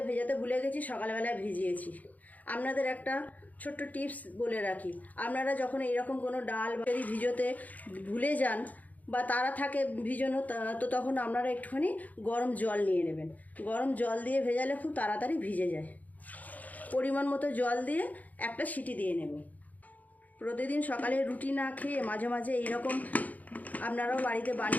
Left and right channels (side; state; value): right; late; 0.078 ms